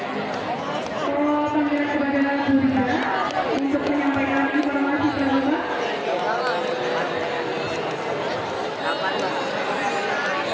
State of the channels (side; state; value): both; identical; correlation 1.00